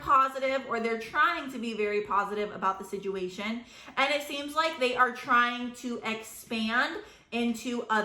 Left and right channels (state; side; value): identical; both; correlation 1.00